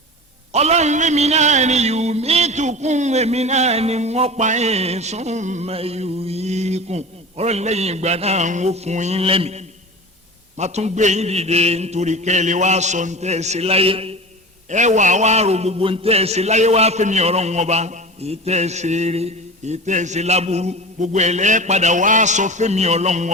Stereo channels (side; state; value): both; normal; correlation 0.31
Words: ọlọ́run lèmi náà ni yumitukum èmi náà ni wọ́n pa yín summa yuhyikum ọlọ́run lẹ́yìn ìgbà náà ń wó fún yín lẹ́mìí má tún gbé yín dìde nítorí kẹ́lẹ́ wá sọ ń tẹ́ ẹ sí láyé ẹ wà wá ro gbogbo ń tẹ́ ẹ sí láyé wá fẹ́mi ọ̀rọ̀ wọn bá èyí tẹ́ ẹ ṣe eré èyí tẹ́ ẹ ṣe láburú gbogbo ẹ̀ lẹ́ padà wá sọ fẹ́mi ọlọ́run